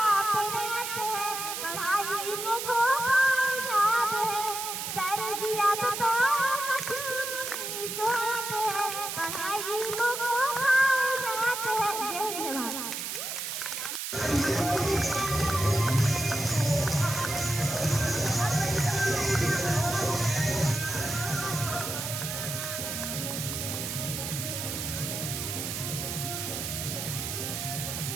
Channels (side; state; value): right; noise; hiss, 4 dB below the sound